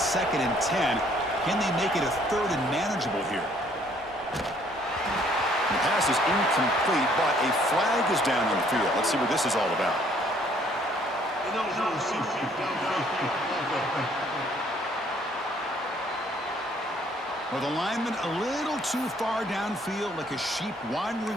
2nd and 10. Can they make it a 3rd and manageable here? The pass is incomplete, but a flag is down on the field. Let's see what this is all about. Well, the lineman a little too far downfield, like a sheep wandering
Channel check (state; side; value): normal; both; correlation 0.62